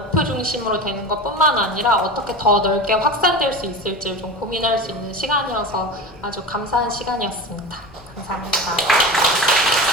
중심으로 되는 것뿐만 아니라 어떻게 더 넓게 확산될 수 있을지를 좀 고민할 수 있는 시간이어서 아주 감사한 시간이었습니다. 감사합니다.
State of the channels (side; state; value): both; normal; correlation 0.28